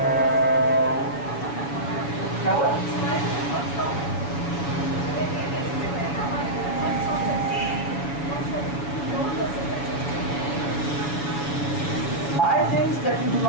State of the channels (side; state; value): right; late; 7.2 ms